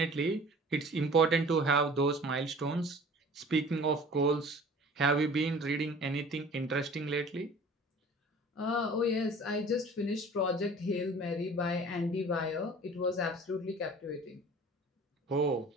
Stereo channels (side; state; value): both; normal; correlation 0.46